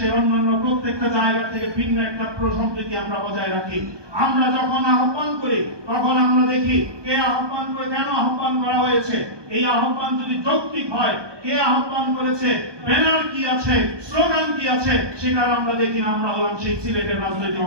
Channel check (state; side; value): late; left; 1.2 ms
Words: অন্যান্য প্রত্যেকটা জায়গা থেকে ভিন্ন একটা সম্প্রীতি আমরা বজায় রাখি। আমরা যখন আহ্বান করি তখন আমরা দেখি কে আহ্বান করে, কেন আহ্বান করা হয়েছে, এই আহ্বান যদি যৌক্তিক হয়, কে আহ্বান করেছে, ব্যানার কি আছে, স্লোগান কি আছে, সেটা আমরা দেখি। আমরা হলাম সেই সিলেটের রাজনৈতিক